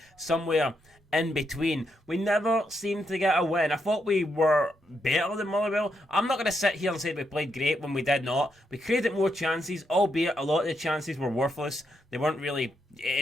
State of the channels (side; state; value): both; normal; correlation 0.80